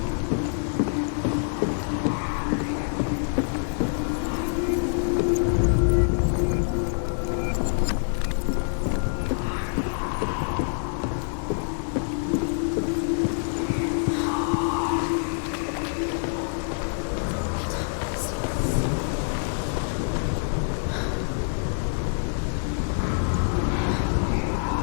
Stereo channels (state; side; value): silent; right; digital silence